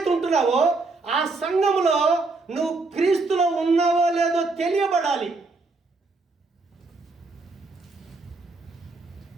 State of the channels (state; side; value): quieter; left; 3.6 dB